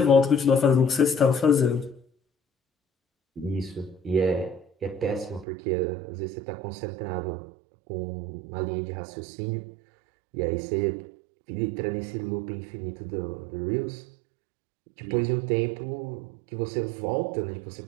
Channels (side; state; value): left; drops out; at 5.5 s